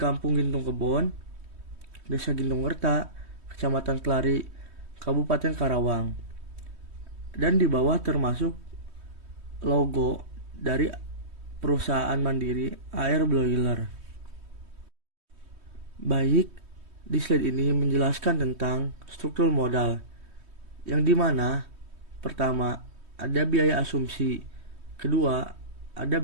Gintung Kebon, Desa Gintung Werta, Kecamatan Kelari, Kabupaten Karawang. Dan di bawah termasuk logo dari perusahaan mandiri AR Broiler. Baik, di slide ini menjelaskan tentang struktur modal, yang dimana pertama ada biaya asumsi, kedua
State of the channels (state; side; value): late; left; 3.2 ms